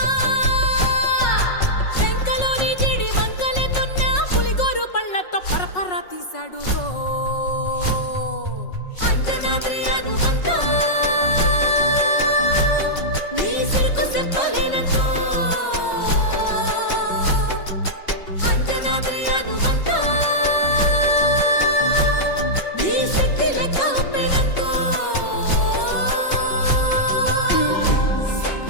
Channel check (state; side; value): late; right; 5.4 ms